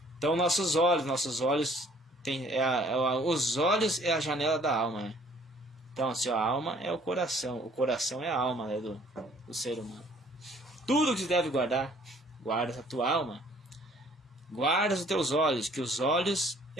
Então nossos olhos os olhos é a janela da alma, né? Então assim, a alma é o coração é a alma, né, do ser humano. Tudo que se deve guardar, guarda a tua alma. Guarda os teus olhos, que os olhos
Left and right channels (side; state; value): both; normal; correlation 0.57